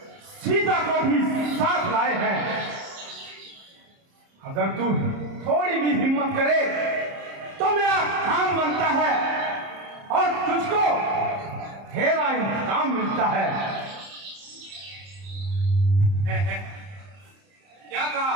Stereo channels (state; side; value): late; left; 30 ms